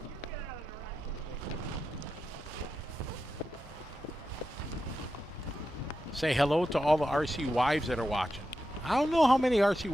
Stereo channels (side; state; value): both; normal; correlation 0.89